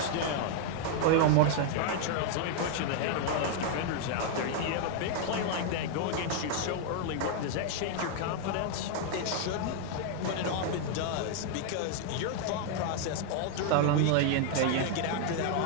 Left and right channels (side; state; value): both; different; correlation 0.00